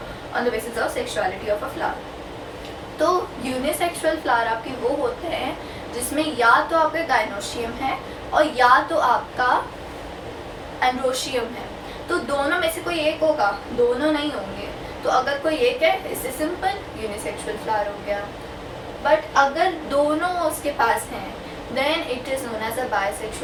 on the basis of sexuality of a flower. तो यूनिसेक्सुअल फ्लावर आपके वो होते हैं जिसमें या तो आपका गाइनोशियम है और या तो आपका एंड्रोशियम है, तो दोनों में से कोई एक होगा, दोनों नहीं होंगे। तो अगर कोई एक है, इससे सिंपल यूनिसेक्सुअल फ्लावर हो गया। बट अगर दोनों उसके पास हैं then it is known as a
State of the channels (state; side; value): identical; both; correlation 1.00